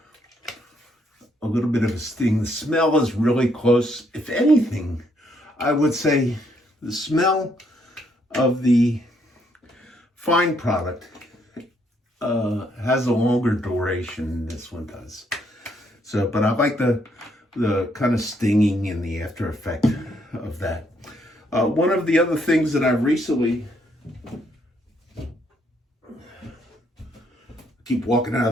little bit of a sting. The smell is really close. If anything, I would say the smell of the fine product has a longer duration than this one does. So, but I like the kind of stinging and the after effect of that. One of the other things that I've recently, keep walking out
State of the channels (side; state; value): both; normal; correlation 0.72